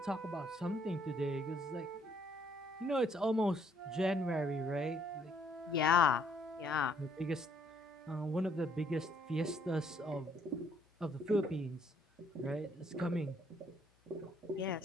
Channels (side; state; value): both; normal; correlation 0.67